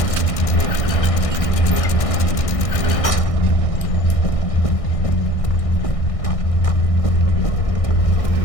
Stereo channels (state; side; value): late; right; 1.6 ms